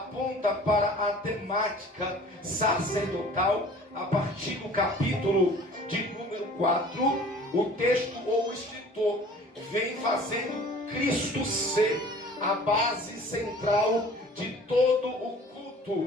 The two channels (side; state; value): both; normal; correlation 0.47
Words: para a temática sacerdotal, a partir do capítulo de número 4, o texto ou o escritor vem fazendo Cristo ser a base central de todo o